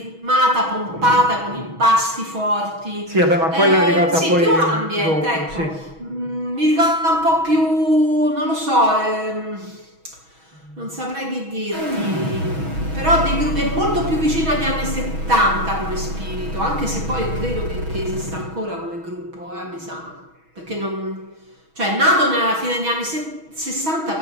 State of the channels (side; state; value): left; late; 6.2 ms